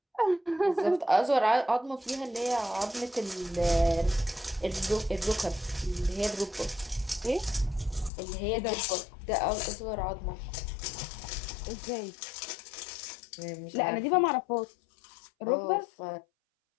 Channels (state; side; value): drops out; right; at 8.1 s